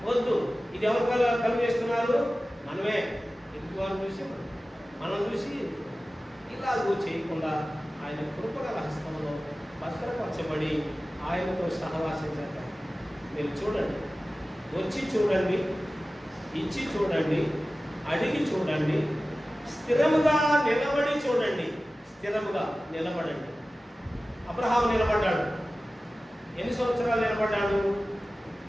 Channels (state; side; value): normal; both; correlation 0.96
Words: వద్దు. ఇది ఎవరు కలిగేస్తున్నారు? మనమే. ఎందుకు వాళ్ళు చూసి మనం చూసి ఇలాగూ చేయకుండా ఆయన కృపగల హస్తంలో భద్రపరచబడి ఆయనతో సహవాసించారు. మీరు చూడండి, వచ్చి చూడండి, ఇచ్చి చూడండి, అడిగి చూడండి, స్థిరముగా నిలబడి చూడండి. స్థిరముగా నిలబడండి. అబ్రహాము నిలబడ్డాడు. ఎన్ని సంవత్సరాలు నిలబడ్డాడు?